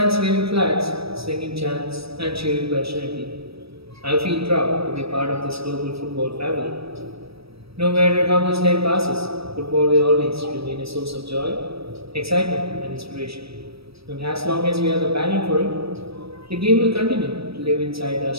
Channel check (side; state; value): left; late; 0.77 ms